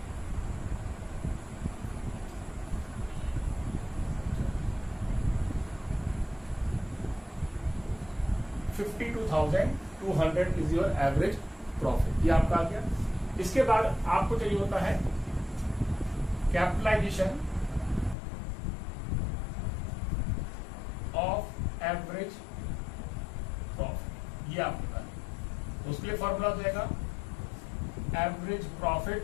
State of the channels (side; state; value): right; drops out; at 18.2 s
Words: $52,200 इज योर एवरेज प्रॉफिट. ये आपका आ गया. इसके बाद आपको चाहिए होता है कैपिटलाइजेशन ऑफ एवरेज प्रॉफिट. ये आपके पास, तो उसके लिए फॉर्मूला हो जाएगा average profit